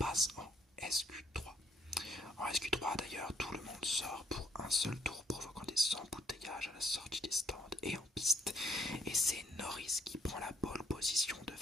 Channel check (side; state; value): both; normal; correlation 0.68